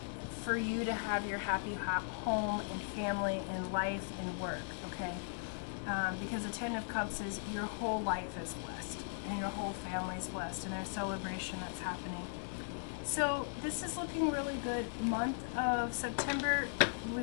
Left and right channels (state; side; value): silent; right; digital silence